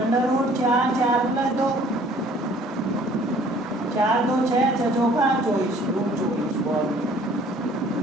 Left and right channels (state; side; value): normal; both; correlation 0.55